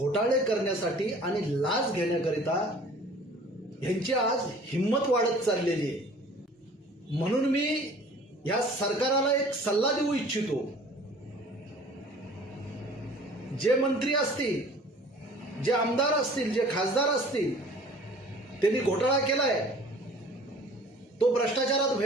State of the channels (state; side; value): normal; both; correlation 0.49